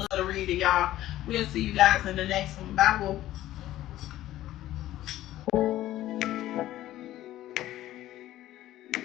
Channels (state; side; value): quieter; right; 14.3 dB